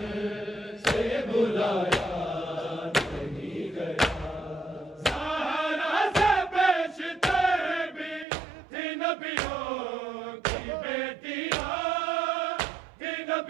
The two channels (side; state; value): left; drops out; at 8.2 s